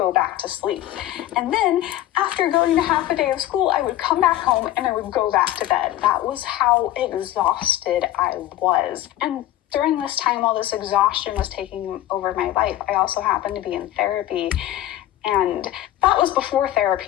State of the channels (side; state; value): right; quieter; 14.0 dB